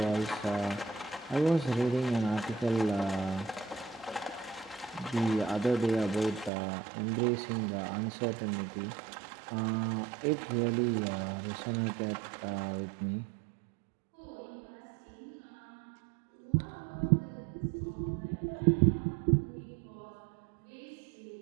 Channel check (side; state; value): left; drops out; at 6.5 s